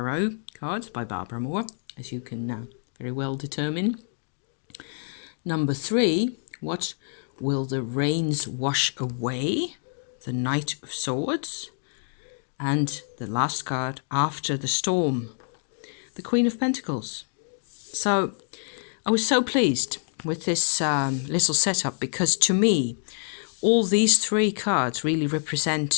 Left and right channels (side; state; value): right; silent; digital silence